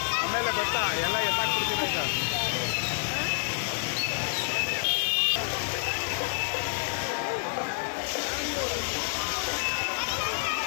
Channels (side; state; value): right; silent; digital silence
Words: ಆಮೇಲೆ ಗೊತ್ತಾ ಎಲ್ಲ ಎತ್ತಾಕ್ಬಿಡ್ತೀನಿ ಈಗ.